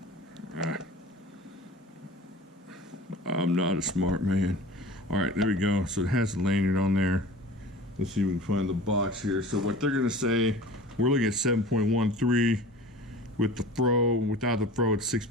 I'm not a smart man. All right, there we go. So it has the lanyard on there. Let's see if we can find the box here. So what they're gonna say, we're looking at 7.13 with the fro. Without the fro, it's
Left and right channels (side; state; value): both; normal; correlation 0.40